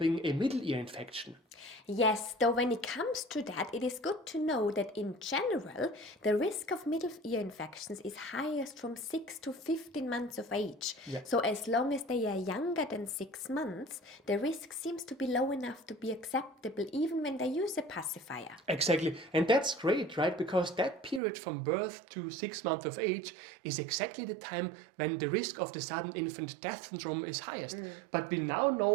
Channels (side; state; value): left; drops out; at 21.2 s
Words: a middle ear infection. Yes, though when it comes to that, it is good to know that in general, the risk of middle ear infections is highest from 6 to 15 months of age. Yeah. So as long as they are younger than 6 months, the risk seems to be low enough to be acceptable even when they use a pacifier. Exactly, and that's great, right? Because that period from birth to 6 months of age is exactly the time when the risk of the sudden infant death syndrome is highest. But we now